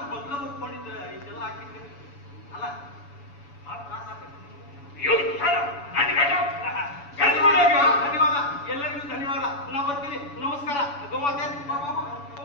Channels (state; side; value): late; right; 7.0 ms